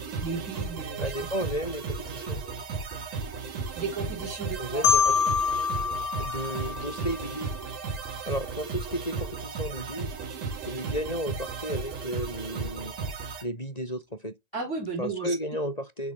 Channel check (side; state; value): right; late; 1.9 ms